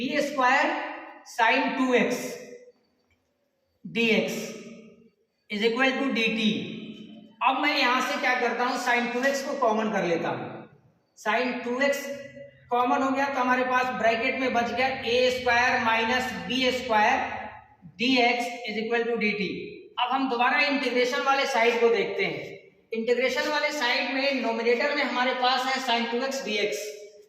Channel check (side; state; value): both; identical; correlation 1.00